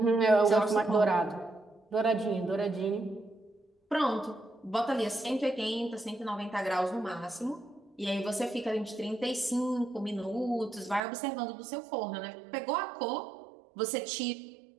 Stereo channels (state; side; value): drops out; left; at 11.0 s